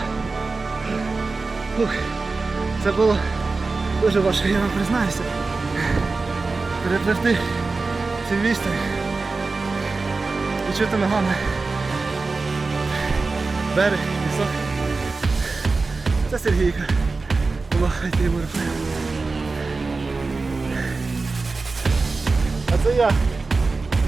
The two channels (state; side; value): quieter; left; 3.9 dB